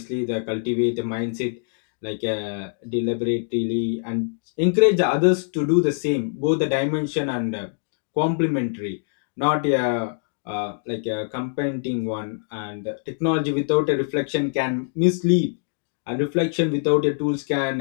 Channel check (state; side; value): silent; right; digital silence